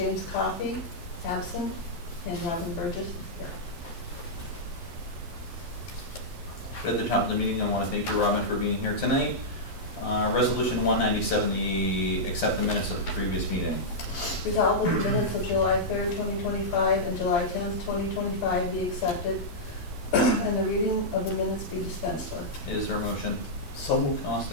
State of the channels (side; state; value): right; late; 12 ms